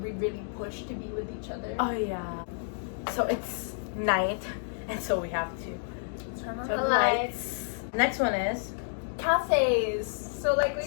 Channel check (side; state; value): right; silent; digital silence